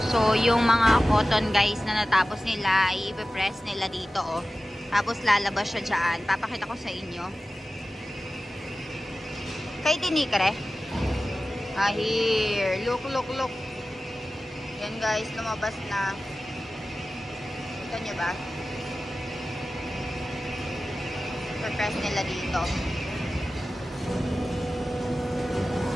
So, yung mga cotton guys na natapos nila, i-press nila dito, oh. Tapos lalabas siya dyan. Papakita ko sa inyo. Kay tinikre. Here. Look, look, look. Yan guys, lumabas na. Kita nyo ba? I-press nila dito.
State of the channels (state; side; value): normal; both; correlation 0.95